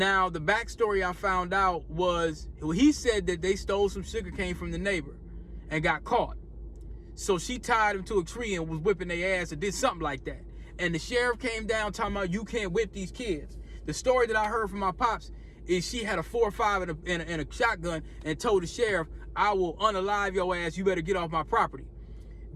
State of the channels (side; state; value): both; identical; correlation 1.00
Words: the backstory I found out was, he said that they stole some sugar cane from the neighbor and got caught. So she tied him to a tree and was whipping their ass or did something like that. And the sheriff came down talking about, you can't whip these kids. The story that I heard from my pops is she had a 4.5 and a shotgun and told the sheriff, I will unalive your ass. You better get off my property.